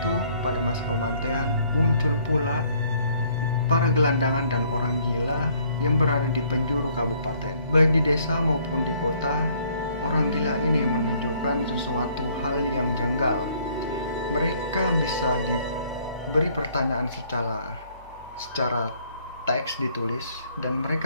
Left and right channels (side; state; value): both; inverted; correlation -0.62